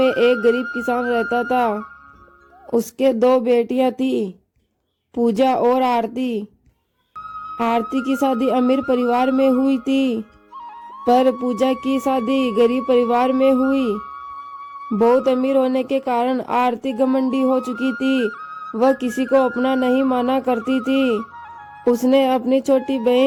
एक गरीब किसान रहता था। उसके दो बेटियां थी, पूजा और आरती। आरती की शादी अमीर परिवार में हुई थी, पर पूजा की शादी गरीब परिवार में हुई। बहुत अमीर होने के कारण आरती घमंडी हो चुकी थी। वह किसी को अपना नहीं माना करती थी। उसने अपनी छोटी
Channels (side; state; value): both; identical; correlation 1.00